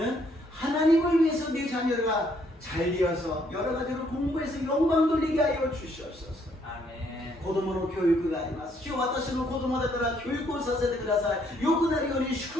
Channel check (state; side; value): normal; both; correlation 0.68